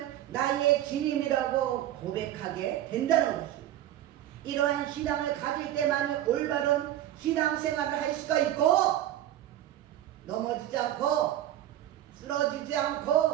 나의 주님이라고 고백하게 된다는 것입니다. 이러한 신앙을 가질 때만 올바른 신앙생활을 할 수가 있고, 넘어지지 않고 쓰러지지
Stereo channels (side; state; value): left; quieter; 12.8 dB